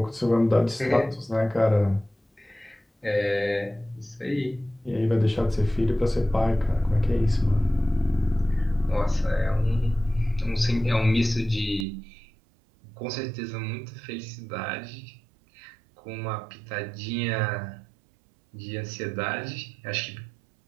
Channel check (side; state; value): left; drops out; at 11.9 s